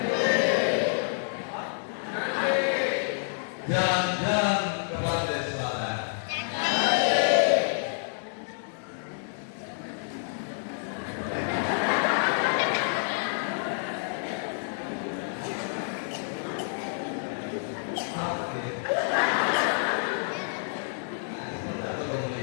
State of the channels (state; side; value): silent; right; digital silence